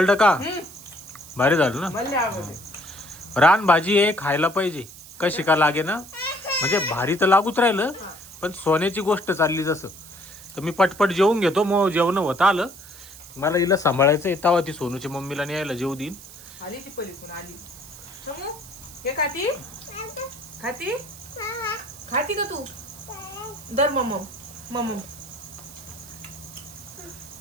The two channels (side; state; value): right; noise; hiss, 18 dB below the sound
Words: का भारी झालं ना. मला आवडते. रान भाजी आहे खायला पाहिजे. कशी का लागे ना म्हणजे भारी तर लागूच राहिलं. पण सोन्याची गोष्ट चालली जसं. तर मी पटपट जेवून घेतो. मग जेवण होतं आलं. मला हिला सांभाळायचं येतावा ती सोनूच्या मम्मीला न्यायला जेवू देईन. आली ती पलीकडून आली. समू हे खाती खाती का तू. दर मम